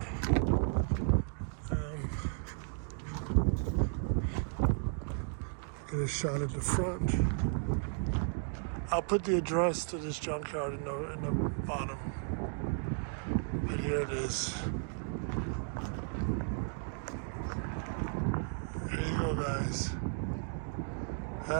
Get a shot at the front. I'll put the address to this junkyard in the bottom. But here it is. There you go, guys.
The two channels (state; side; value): silent; left; 55 dB below the other